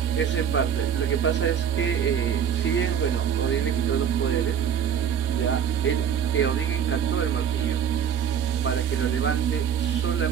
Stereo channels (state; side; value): quieter; left; 8.3 dB